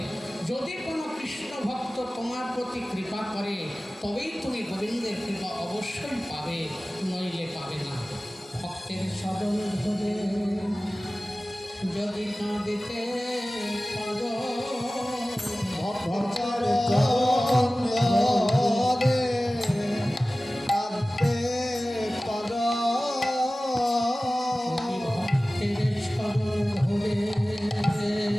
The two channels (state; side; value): normal; both; correlation 0.97